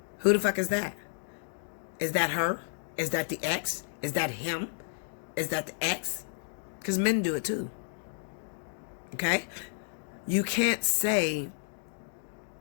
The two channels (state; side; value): silent; right; digital silence